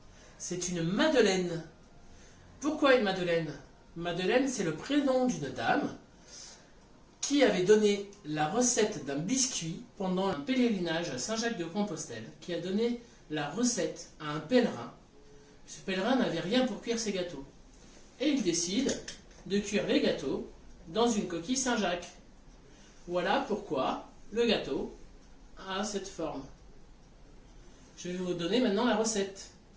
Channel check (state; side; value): identical; both; correlation 1.00